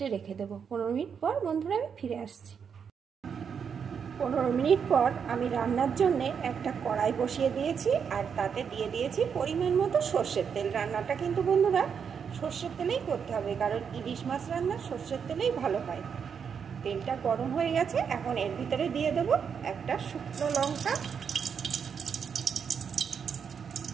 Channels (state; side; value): quieter; left; 6.9 dB